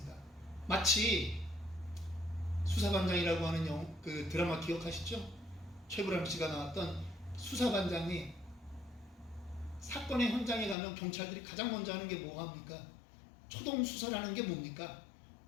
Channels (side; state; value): right; drops out; at 10.8 s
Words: 마치 수사반장이라고 하는 그 드라마 기억하시죠? 최불암 씨가 나왔던 수사반장이 사건의 현장에 가면 경찰들이 가장 먼저 하는 게 뭐합니까? 초동 수사라는 게 뭡니까?